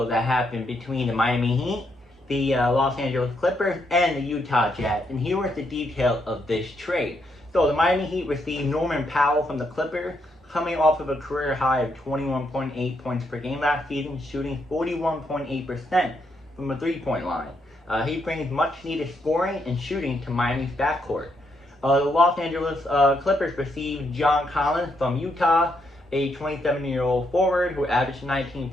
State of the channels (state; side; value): normal; both; correlation 0.77